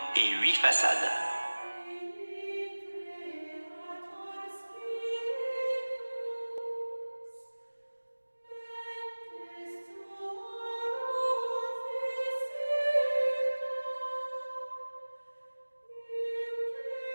et 8 façades.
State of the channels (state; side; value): inverted; both; correlation -1.00